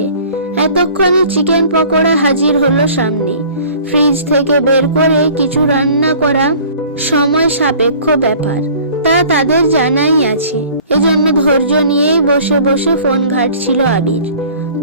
এতক্ষণে চিকেন পকোড়া হাজির হলো সামনে। ফ্রিজ থেকে বের করে কিছু রান্না করা সময় সাপেক্ষ ব্যাপার, তা তাদের জানাই আছে। এজন্য ধৈর্য নিয়েই বসে বসে ফোন ঘাঁটছিল আবির।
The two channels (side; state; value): both; inverted; correlation -0.49